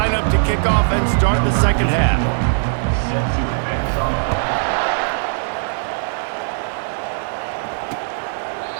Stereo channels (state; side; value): silent; left; digital silence